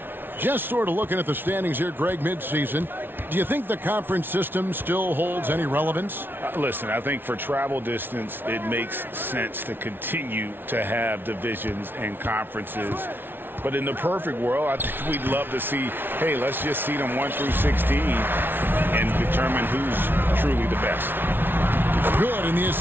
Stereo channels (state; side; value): late; left; 0.10 ms